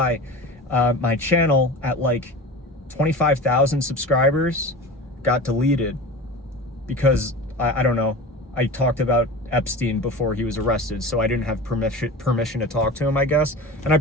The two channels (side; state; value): both; normal; correlation 0.32